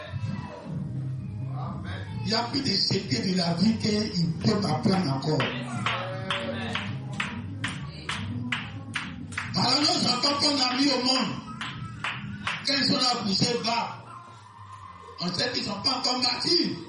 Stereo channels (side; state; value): both; identical; correlation 1.00